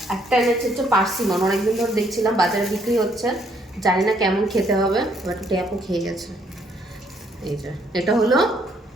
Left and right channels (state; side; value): normal; both; correlation 0.68